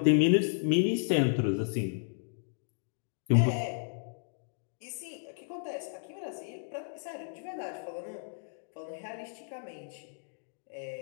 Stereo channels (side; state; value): right; silent; digital silence